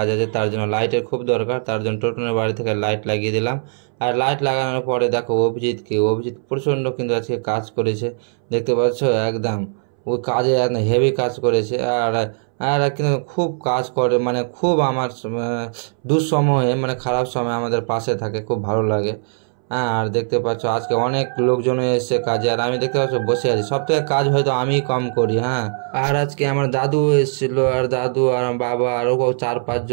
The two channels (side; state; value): left; silent; 64 dB below the other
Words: আছে, তার জন্য লাইটের খুব দরকার। তার জন্য টোটনের বাড়ি থেকে লাইট লাগিয়ে দিলাম। আর লাইট লাগানোর পরে দেখো অভিজিৎ প্রচণ্ড কিন্তু আজকে কাজ করেছে, দেখতে পাচ্ছ একদম। ওই কাজে একদম হেভি কাজ করেছে। আর আর কিন্তু খুব কাজ করে, মানে খুব আমার দুঃসময়ে, মানে খারাপ সময় আমাদের পাশে থাকে, খুব ভালো লাগে। হ্যাঁ, আর দেখতে পাচ্ছ আজকে অনেক লোকজন এসেছে কাজে, আর আমি দেখতে পাচ্ছ বসে আছি। সব থেকে কাজ হয়তো আমি কম করি। হ্যাঁ, আর আজকে আমার দাদু এসেছিল, আর দাদু আর বাবা আরও 4-5